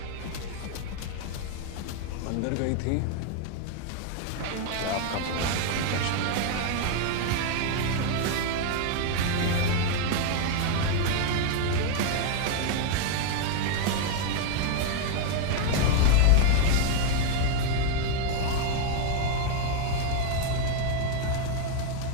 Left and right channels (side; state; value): both; different; correlation 0.00